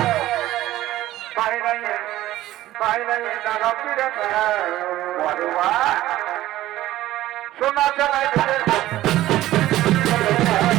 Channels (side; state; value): left; quieter; 15.1 dB